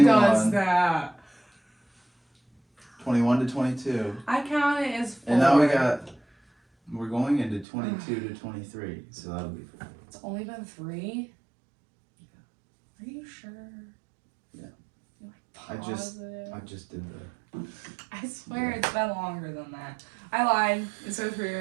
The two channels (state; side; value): drops out; left; at 7.7 s